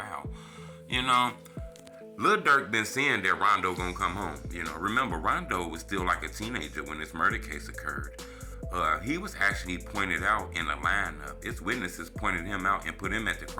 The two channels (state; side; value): identical; both; correlation 1.00